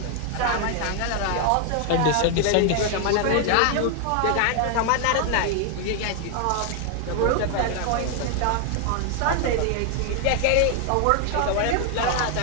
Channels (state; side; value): different; both; correlation 0.00